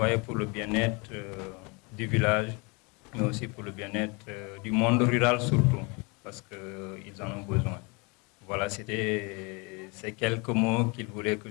pour le bien-être du village, mais aussi pour le bien-être du monde rural surtout, parce qu'ils en ont besoin. Voilà, c'était ces quelques mots qu'ils voulaient que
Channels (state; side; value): quieter; right; 29.8 dB